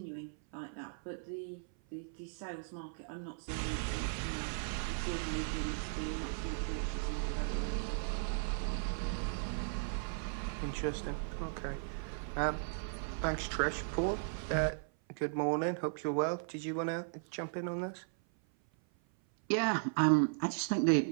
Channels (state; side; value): silent; left; 53 dB below the other